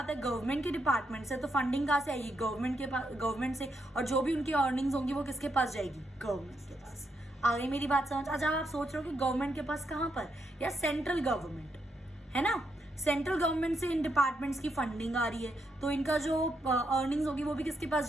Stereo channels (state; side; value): normal; both; correlation 0.80